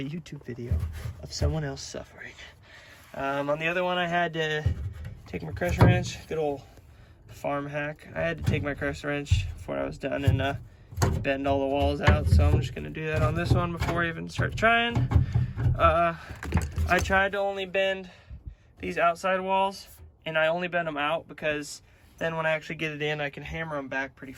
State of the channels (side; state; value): both; identical; correlation 1.00